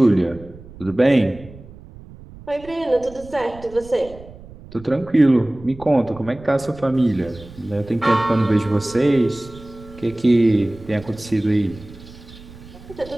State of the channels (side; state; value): right; noise; rumble, 19 dB below the sound